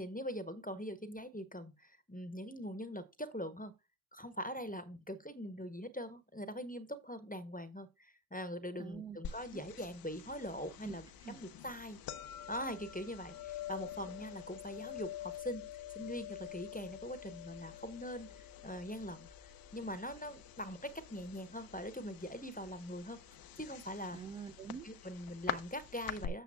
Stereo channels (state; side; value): normal; both; correlation 0.23